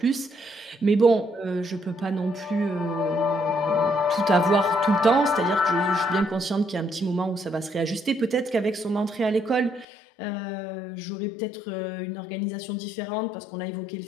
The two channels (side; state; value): right; drops out; at 9.9 s